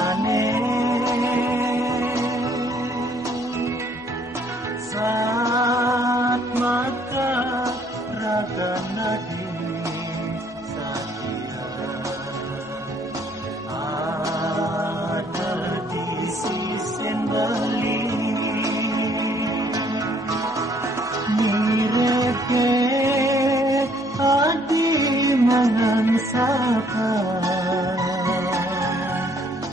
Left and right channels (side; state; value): both; normal; correlation 0.64